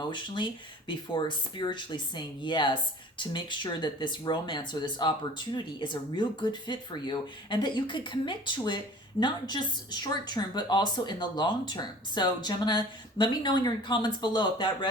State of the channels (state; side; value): normal; both; correlation 0.45